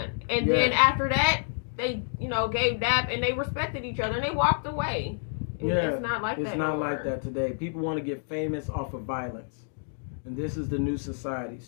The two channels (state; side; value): silent; right; digital silence